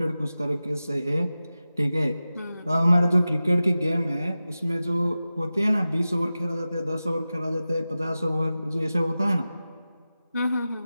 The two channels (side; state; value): both; inverted; correlation -0.95